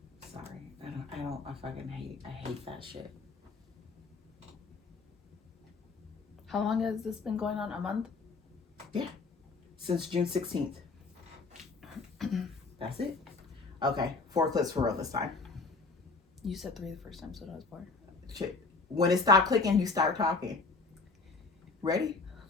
Sorry. I hate that shit. How long has this been going on? A month? Yeah. Since June 16th. That's it? Okay. 4 clips for real this time. You said 3 the first time, so that was 4. Shit. When it stopped clicking, you start talking. Ready?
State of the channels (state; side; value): quieter; right; 4.0 dB